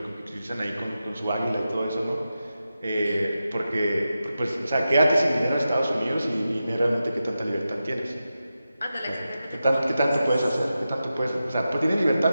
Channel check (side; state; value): both; inverted; correlation -0.91